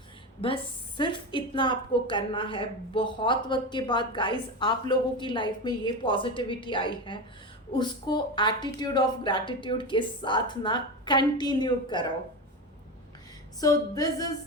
बस सिर्फ इतना आपको करना है। बहुत वक्त के बाद गाइस आप लोगों की लाइफ में ये पॉजिटिविटी आई है, उसको एटीट्यूड ऑफ ग्रैटिट्यूड के साथ ना कंटिन्यू करो। So this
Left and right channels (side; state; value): both; normal; correlation 0.20